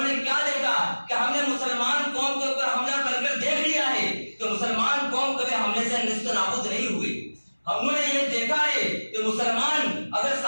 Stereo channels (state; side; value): inverted; both; correlation -1.00